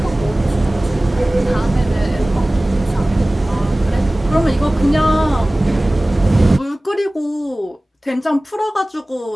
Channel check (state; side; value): normal; both; correlation 0.98